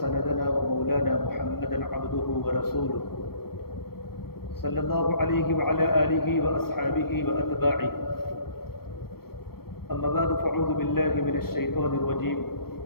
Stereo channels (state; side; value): late; right; 0.95 ms